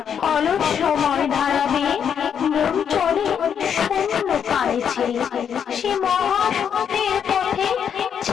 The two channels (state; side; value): quieter; right; 7.9 dB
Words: অলস সময় ধারাবে মন চলে শূন্য পানে ছেড়ে, সে মহাশূন্যের পথে